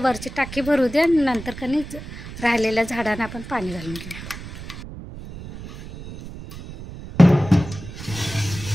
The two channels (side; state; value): right; noise; rumble, 12 dB below the sound